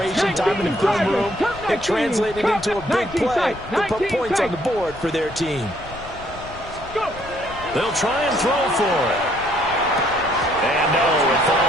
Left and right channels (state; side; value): noise; left; rumble, 16 dB below the sound